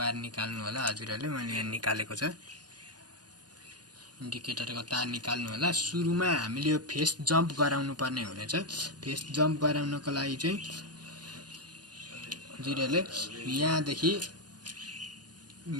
निकाल्नु होला हजुरहरुले। मैले यहाँ निकालेको छ। इन्डिकेटरको तार निकाल्नु होला। सुरुमा हामीले यो फेस जम्प गराउनु पर्ने हुनेछ। फेस जम्प गराउनको लागि चाहिँ हजुरहरुले यहाँदेखि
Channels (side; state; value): left; late; 0.69 ms